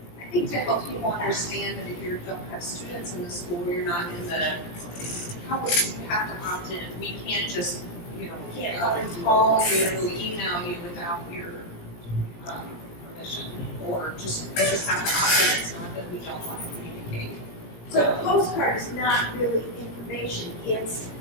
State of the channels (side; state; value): right; late; 17 ms